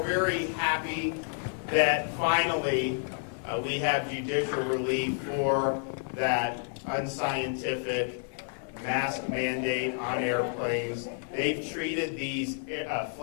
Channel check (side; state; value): right; silent; 55 dB below the other